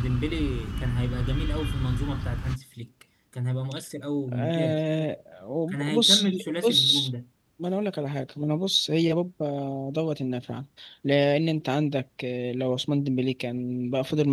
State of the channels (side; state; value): both; identical; correlation 1.00